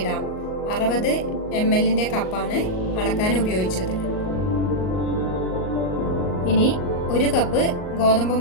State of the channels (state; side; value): late; right; 38 ms